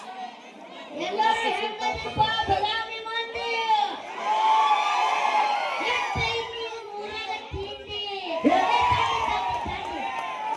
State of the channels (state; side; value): identical; both; correlation 1.00